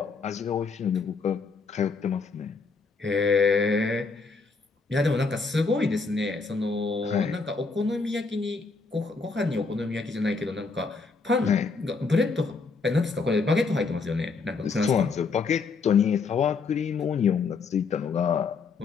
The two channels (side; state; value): right; quieter; 4.5 dB